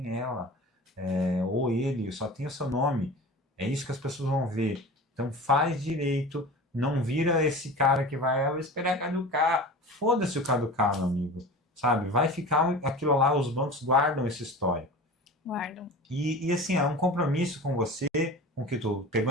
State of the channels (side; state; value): both; normal; correlation 0.35